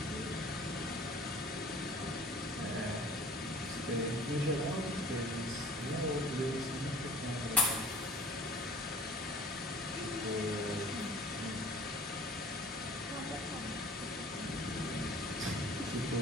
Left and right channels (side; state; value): both; normal; correlation 0.48